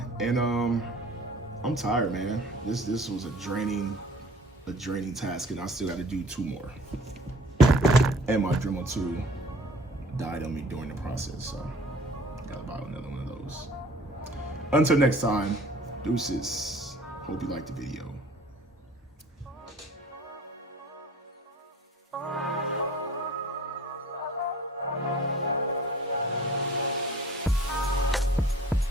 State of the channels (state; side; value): normal; both; correlation 0.49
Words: and I'm tired, man. This was a draining task, and I still got to do 2 more. And my Dremel 2 died on me during the process, so gotta buy another one of those. Until next time, deuces. Hope you liked the video.